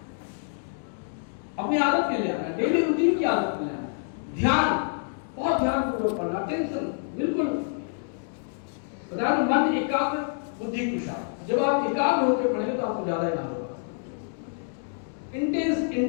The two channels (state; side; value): silent; right; digital silence